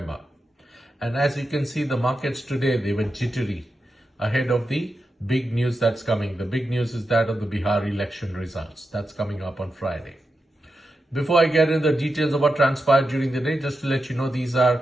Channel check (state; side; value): normal; both; correlation 0.88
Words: And as you can see, the markets today, they were jittery ahead of the big news that's coming. The big news is that of the Bihar election results. That's coming up on Friday. Before I get into the details of what transpired during the day, just to let you know, these